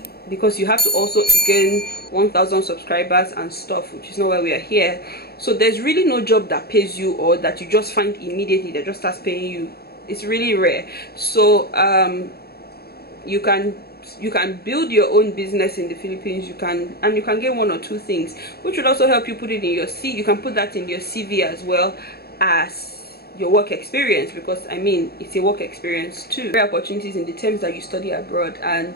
because you have to also gain 1,000 subscribers and stuff, which is not why we are here. So there's really no job that pays you, or that you just find immediately that just starts paying you. It's really rare. So you can build your own business in the Philippines. You can get 1 or 2 things, which would also help you put it in your CV. You can put that in your CV as well as your work experience, because I mean it's a work experience too. Career opportunities in the terms that you study abroad.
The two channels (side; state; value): right; late; 0.46 ms